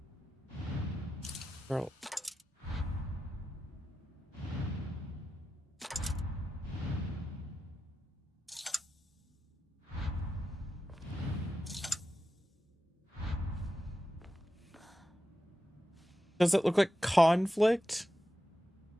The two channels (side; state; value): both; normal; correlation 0.91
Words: Girl. Does it look like conflict?